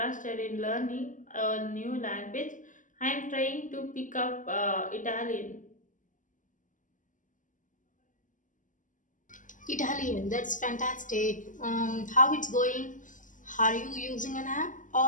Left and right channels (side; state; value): right; late; 0.37 ms